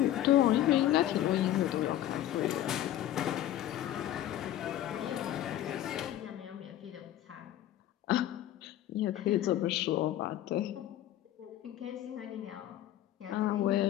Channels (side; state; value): right; quieter; 12.7 dB